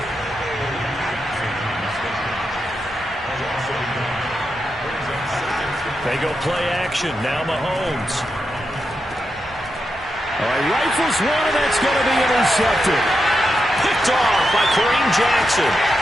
They go play action. Now Mahomes. All right, rifles one, and that's going to be intercepted. Picked off by Kareem Jackson.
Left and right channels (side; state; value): both; normal; correlation 0.86